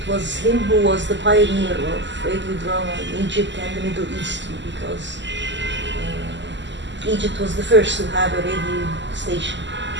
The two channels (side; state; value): left; late; 0.53 ms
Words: was him who was the pioneer of radio drama in Egypt and the Middle East, because Egypt was the first to have a radio station